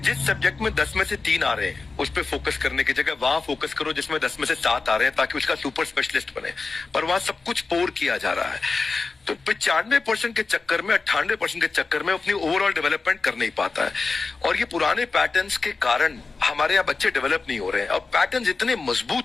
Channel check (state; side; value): quieter; right; 4.1 dB